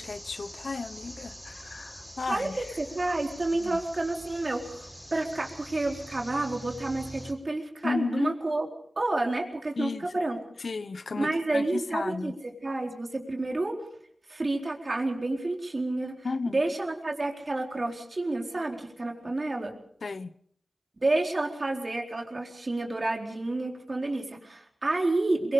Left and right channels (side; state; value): both; normal; correlation 0.97